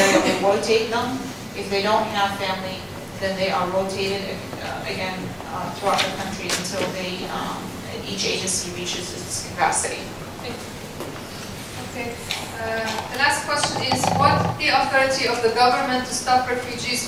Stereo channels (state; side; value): identical; both; correlation 1.00